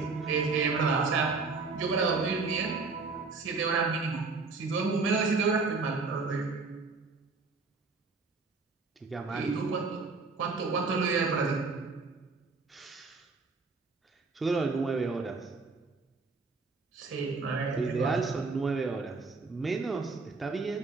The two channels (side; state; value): left; quieter; 4.2 dB